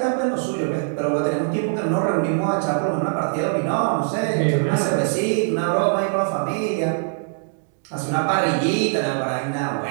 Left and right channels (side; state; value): left; silent; digital silence